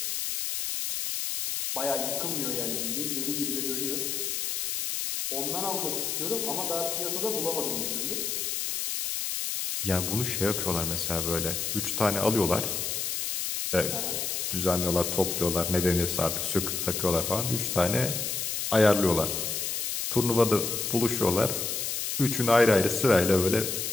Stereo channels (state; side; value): noise; left; hiss, 2 dB below the sound